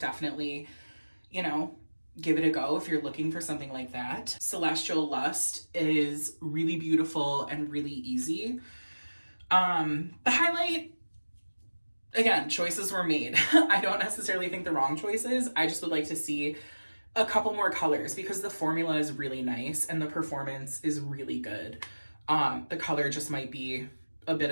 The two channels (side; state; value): both; inverted; correlation -1.00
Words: you know, give it a go if you're looking for something like that. Celestial Lust is really beautiful and really easy. The highlight, again, choices were made. I don't necessarily think the wrong choices. I just would like to see a couple more colors, because the formula is really nice and the performance is really good. The color just might be a bit